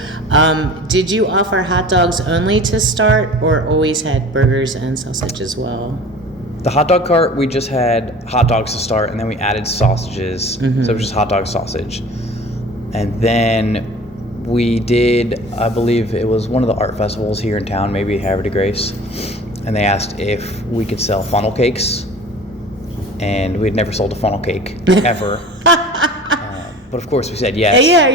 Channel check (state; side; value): normal; both; correlation 0.42